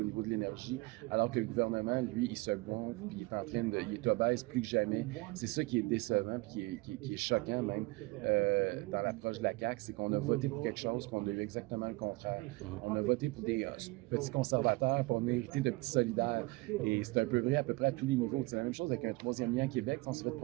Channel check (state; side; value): quieter; left; 23.7 dB